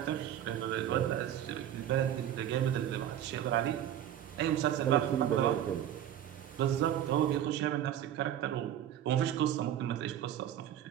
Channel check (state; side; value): quieter; left; 10.9 dB